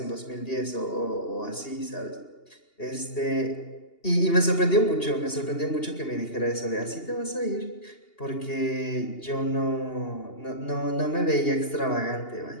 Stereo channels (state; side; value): late; right; 2.8 ms